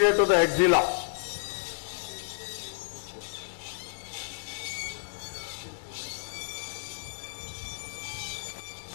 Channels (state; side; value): silent; right; 57 dB below the other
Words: to the axilla.